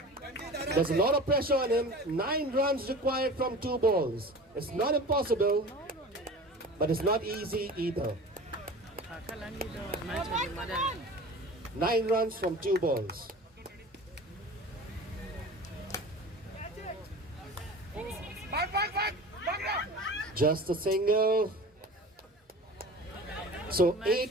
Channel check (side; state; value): both; normal; correlation 0.38